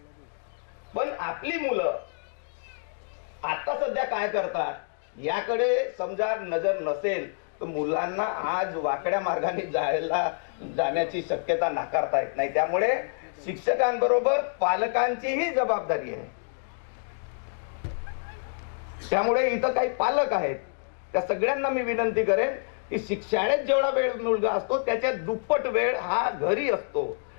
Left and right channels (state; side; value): silent; right; digital silence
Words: पण आपली मुलं आता सध्या काय करतात याकडे समजा नजर नसेल तर मुलांना आज वाकड्या मार्गाने जाण्याची शक्यता नाकारता येत नाही. त्यामुळे शिक्षकांबरोबर पालकांचीही जबाबदारी आहे. त्यामुळे इथं काही पालक आहेत, त्या सगळ्यांना मी विनंती करेन की शाळेत जेवढा वेळ मुलगा असतो त्याच्या दुप्पट वेळ हा घरी असतो